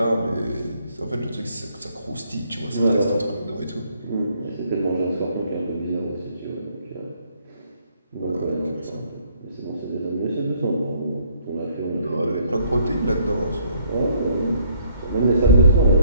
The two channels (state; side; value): inverted; both; correlation -0.66